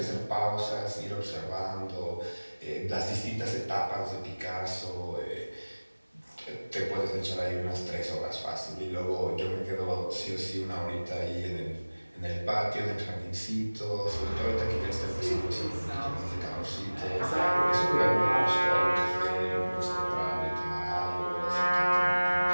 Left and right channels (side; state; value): both; inverted; correlation -1.00